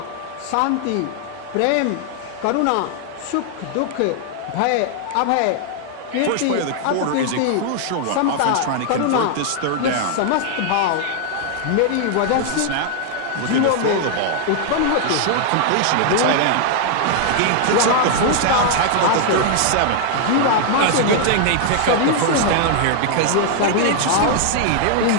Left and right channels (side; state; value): both; different; correlation 0.00